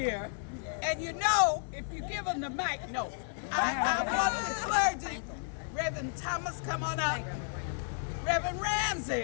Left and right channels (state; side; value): silent; right; digital silence